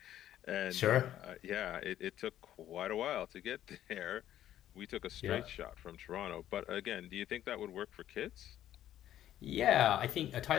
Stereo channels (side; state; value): right; quieter; 12.0 dB